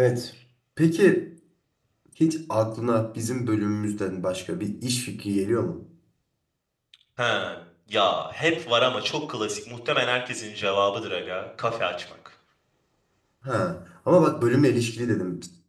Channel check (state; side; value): identical; both; correlation 1.00